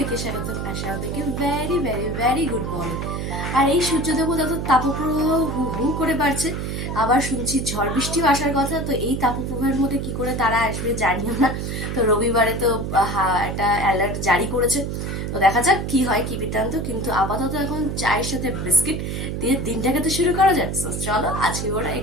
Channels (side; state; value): right; noise; hum, 3 dB below the sound